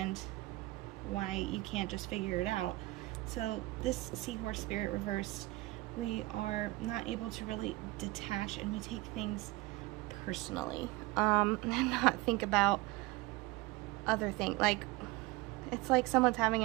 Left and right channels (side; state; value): left; quieter; 20.7 dB